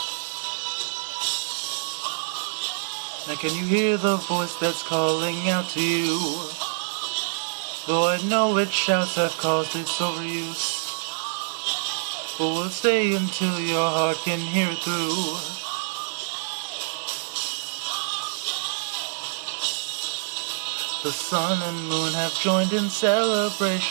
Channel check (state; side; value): silent; left; digital silence